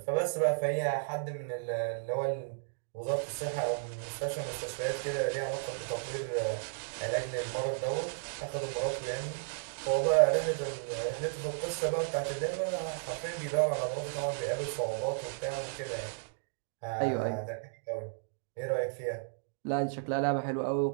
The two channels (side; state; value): left; silent; digital silence